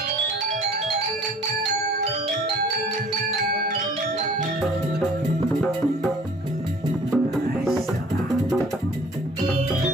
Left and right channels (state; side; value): normal; both; correlation 0.51